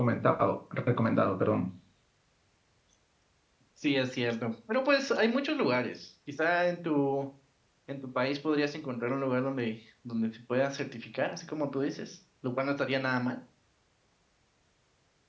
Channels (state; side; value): identical; both; correlation 1.00